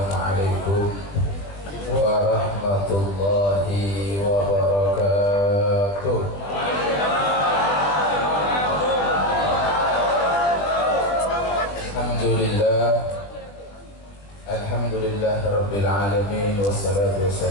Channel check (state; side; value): late; right; 20 ms